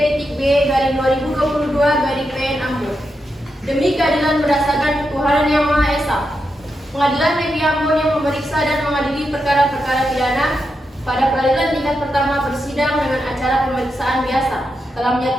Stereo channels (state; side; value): normal; both; correlation 0.86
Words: Ambon. Demi keadilan berdasarkan ketuhanan yang Maha Esa, Pengadilan Negeri Ambon yang memeriksa dan mengadili perkara-perkara pidana pada peradilan tingkat pertama bersidang dengan acara pemeriksaan biasa telah